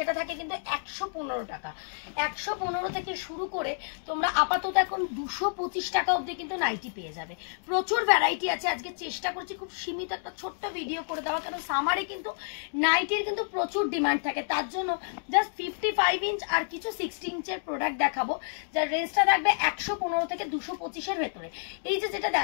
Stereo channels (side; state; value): right; silent; digital silence